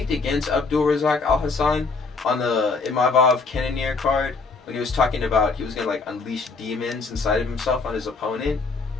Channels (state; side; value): quieter; right; 4.2 dB